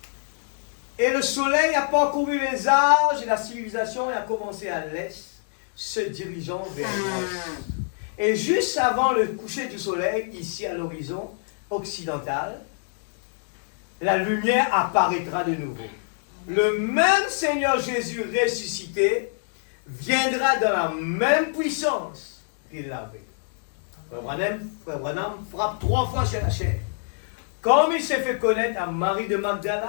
Et le soleil a parcouru les âges et la civilisation a commencé à l'est, se dirigeant vers l'ouest. Et juste avant le coucher du soleil, ici à l'horizon occidental, la lumière apparaîtra de nouveau. Le même Seigneur Jésus ressuscité viendra dans la même puissance qu'il l'avait. Frère Branham frappe 3 fois sur la chair. Comme il s'est fait connaître à Marie de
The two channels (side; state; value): right; silent; digital silence